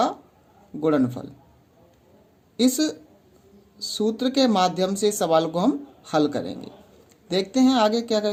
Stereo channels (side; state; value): both; identical; correlation 1.00